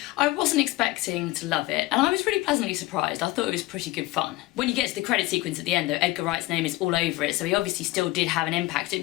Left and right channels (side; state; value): right; quieter; 19.3 dB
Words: I wasn't expecting to love it, and I was really pleasantly surprised. I thought it was pretty good fun. When you get to the credit sequence at the end though, Edgar Wright's name is all over it, so he obviously still did have an impact. It'd